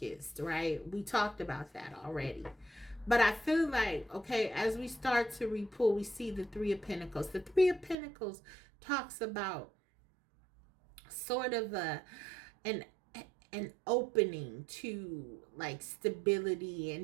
right? We talked about that already. But I feel like, okay, as we start to repull, we see the Three of Pentacles. The Three of Pentacles talks about sort of an an opening to like stability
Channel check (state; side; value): drops out; left; at 8.0 s